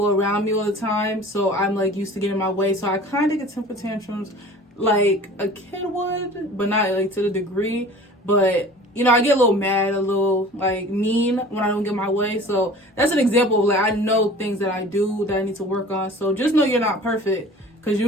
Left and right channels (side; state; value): both; normal; correlation 0.43